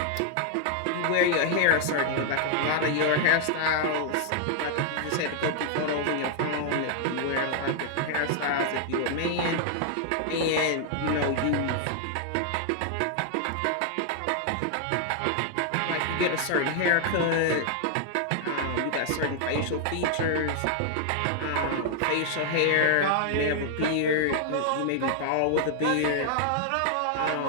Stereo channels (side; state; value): both; different; correlation 0.00